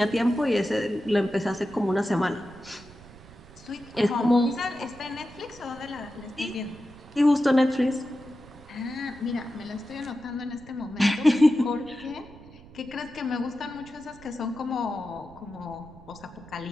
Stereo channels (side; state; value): right; noise; rumble, 21 dB below the sound